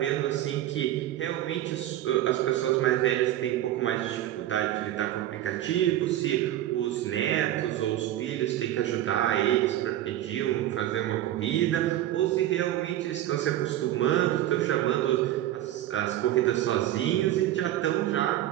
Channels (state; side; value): quieter; left; 13.3 dB